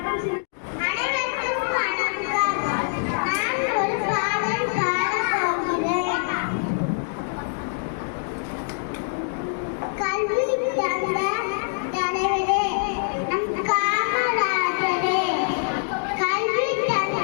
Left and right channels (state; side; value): silent; right; digital silence